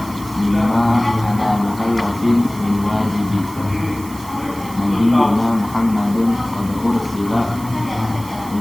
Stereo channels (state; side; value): noise; right; hiss, 18 dB below the sound